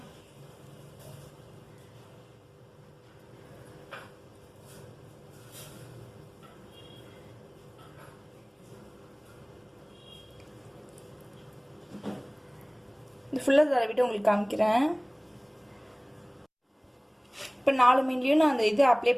இது ஃபுல்லாக தடவிட்டு உங்களுக்கு காமிக்கிறேன். இப்போ 4 மீன்லையும் நான் அந்த இது அப்ளை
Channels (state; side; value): identical; both; correlation 1.00